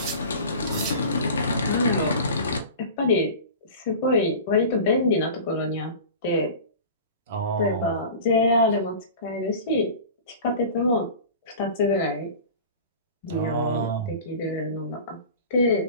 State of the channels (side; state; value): both; inverted; correlation -0.36